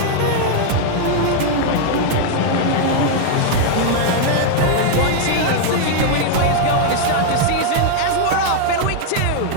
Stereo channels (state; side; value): different; both; correlation 0.00